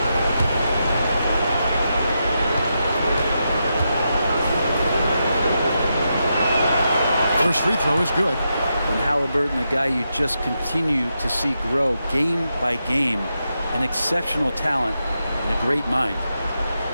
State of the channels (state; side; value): inverted; both; correlation -0.85